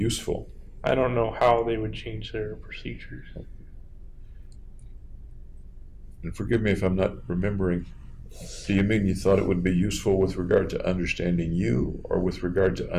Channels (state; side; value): identical; both; correlation 1.00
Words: I don't know how they would change their procedures. And forgive me if I'm not remembering. Do you mean you thought it would be useful with regard to understanding you, or with regard to